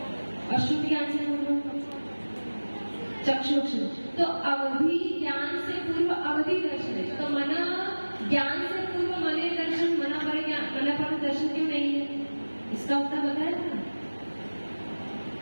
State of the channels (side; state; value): both; inverted; correlation -1.00